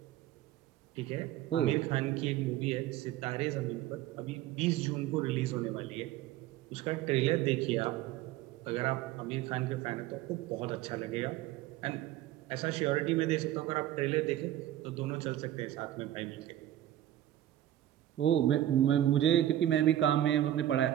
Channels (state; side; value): quieter; left; 13.0 dB